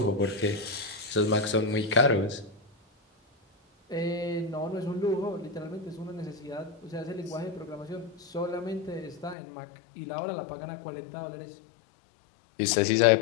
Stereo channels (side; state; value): right; drops out; at 9.3 s